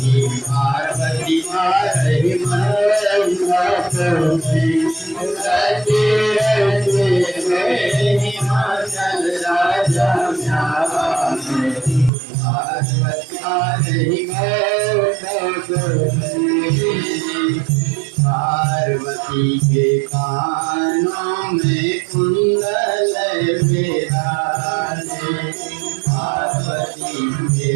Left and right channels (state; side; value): drops out; left; at 12.1 s